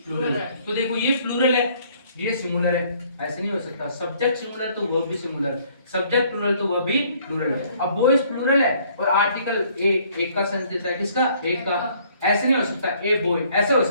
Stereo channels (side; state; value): both; inverted; correlation -0.62